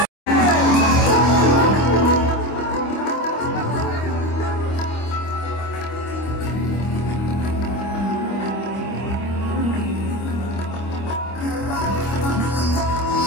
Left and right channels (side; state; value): right; late; 25 ms